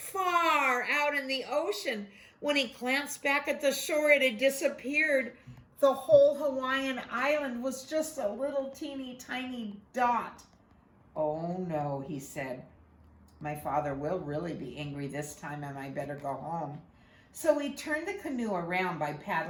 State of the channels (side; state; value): both; identical; correlation 1.00